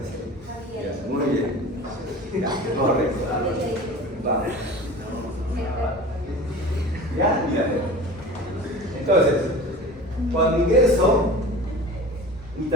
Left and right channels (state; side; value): normal; both; correlation 0.37